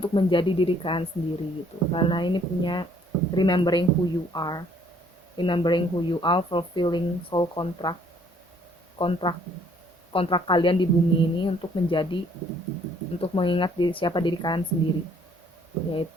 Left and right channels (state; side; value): normal; both; correlation 0.61